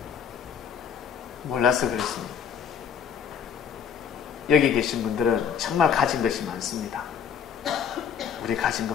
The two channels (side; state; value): right; quieter; 7.6 dB